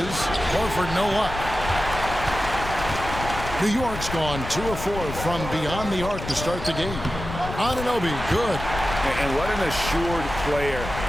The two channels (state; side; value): noise; left; rumble, 8 dB below the sound